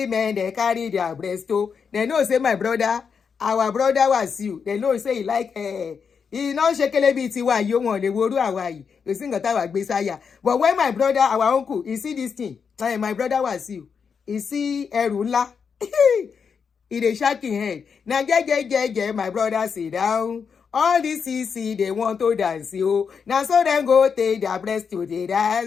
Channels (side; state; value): right; quieter; 6.2 dB